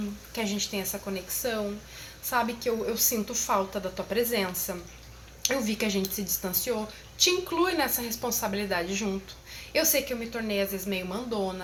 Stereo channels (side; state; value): both; identical; correlation 1.00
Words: que a gente tenha essa conexão. Sabe que eu sinto falta da tua presença. Eu vi que a gente se distanciou, te inclui nessa responsabilidade junto. Eu sei que eu me tornei às vezes meio